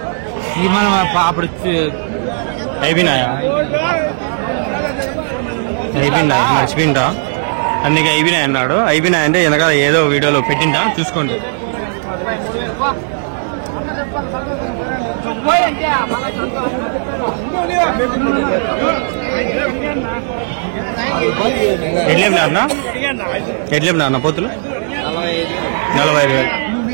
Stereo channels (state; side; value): silent; left; digital silence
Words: అప్పుడు అయిపోయినాయా? అయిపోయినాయి మర్చిపోయిందా? అందుకే అయిపోయినాయి అన్నాడు. అయిపోయినాయి అంటే వెనకాల ఏదో వీడియోలో పెట్టిందా చూసుకోండి. ఎట్లేమినారన్నా? ఎట్లేమినారన్నా పోతులు? 45,000.